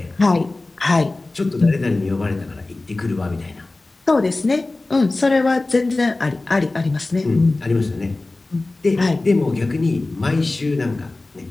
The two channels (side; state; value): right; quieter; 3.1 dB